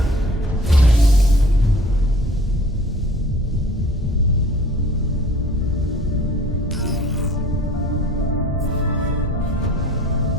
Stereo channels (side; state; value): both; normal; correlation 0.49